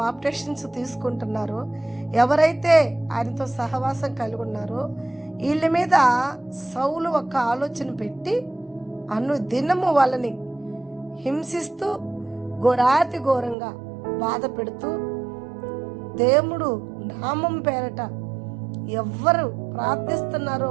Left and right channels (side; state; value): left; drops out; at 13.6 s